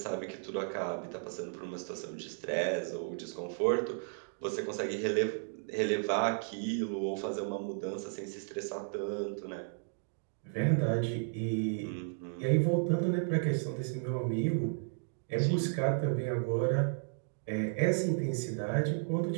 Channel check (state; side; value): silent; left; digital silence